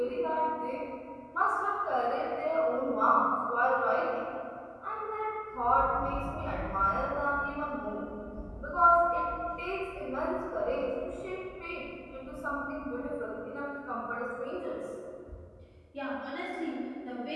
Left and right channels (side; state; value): both; identical; correlation 1.00